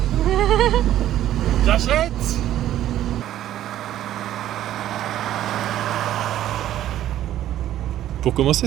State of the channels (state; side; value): quieter; left; 12.5 dB